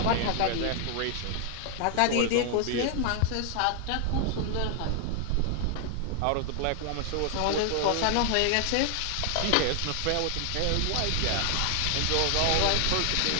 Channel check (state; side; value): different; both; correlation 0.00